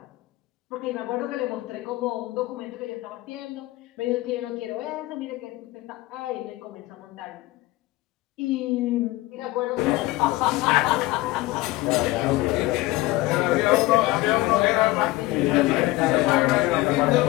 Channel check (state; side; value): quieter; right; 19.0 dB